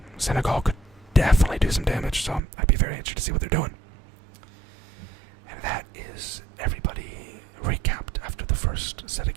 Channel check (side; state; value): left; drops out; at 2.4 s